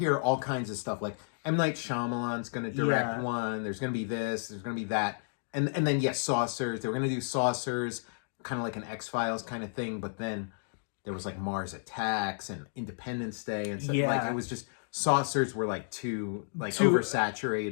all kinds of stuff like M. Night Shyamalan's going to direct one, there's going to be this, there's going to be that, and then yes, Saucers, they were going to do Saucers, kind of like an X-Files kind of thing, but then there was like Mars Attacks and Independence Day and stuff. Like, it was just, Saucers were like too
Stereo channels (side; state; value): right; silent; digital silence